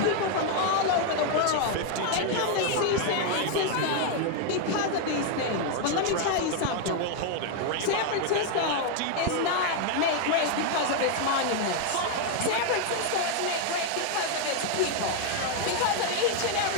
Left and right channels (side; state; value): both; different; correlation 0.01